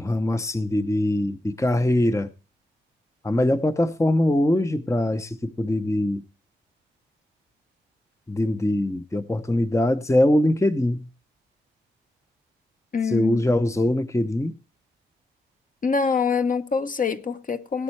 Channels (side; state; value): both; normal; correlation 0.89